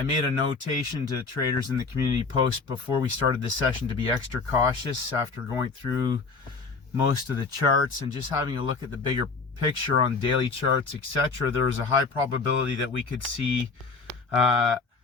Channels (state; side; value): quieter; right; 4.4 dB